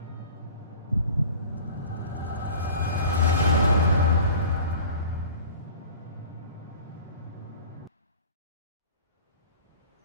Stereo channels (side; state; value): both; inverted; correlation -0.42